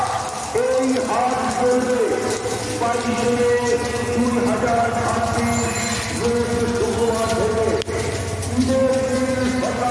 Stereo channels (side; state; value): both; identical; correlation 1.00